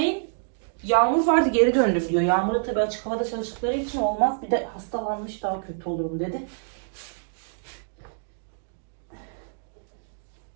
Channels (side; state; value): left; silent; digital silence